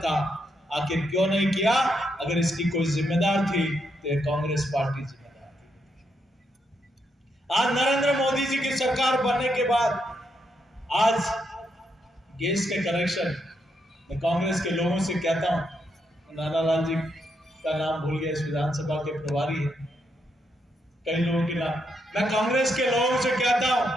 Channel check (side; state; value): both; normal; correlation 0.79